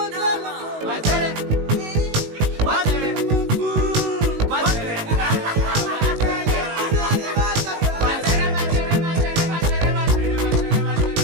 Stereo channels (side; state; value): left; late; 19 ms